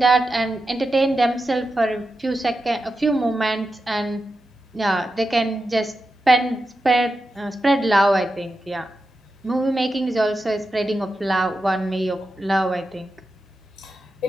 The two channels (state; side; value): normal; both; correlation 0.90